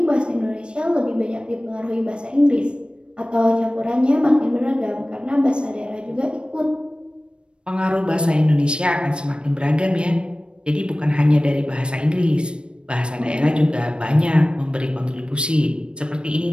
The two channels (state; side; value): late; left; 0.056 ms